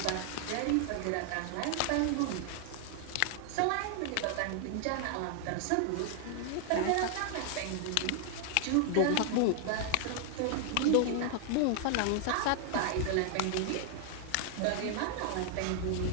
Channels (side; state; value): both; different; correlation 0.00